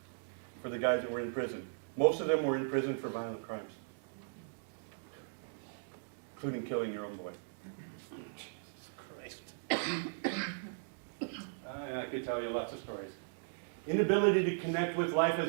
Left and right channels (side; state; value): left; silent; digital silence